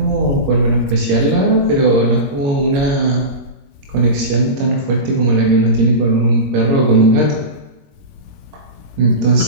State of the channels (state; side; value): late; left; 22 ms